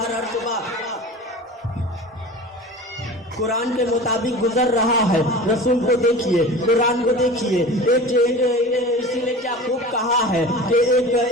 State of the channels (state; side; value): normal; both; correlation 0.36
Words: شعبہ قرآن کے مطابق گزر رہا ہے. رسول کو دیکھیے, قرآن کو دیکھیے. اسی نے کیا خوب کہا ہے کہ